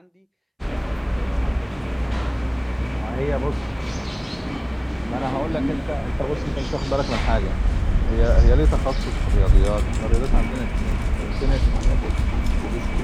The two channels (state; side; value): identical; both; correlation 1.00